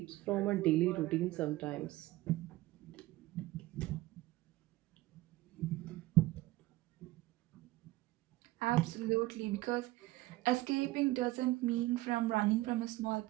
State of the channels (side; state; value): left; quieter; 18.2 dB